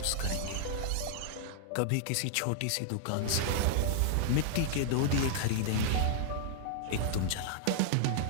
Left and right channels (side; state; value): both; different; correlation -0.01